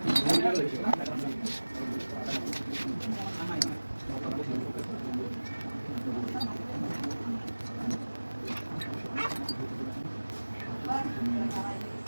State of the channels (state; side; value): inverted; both; correlation -1.00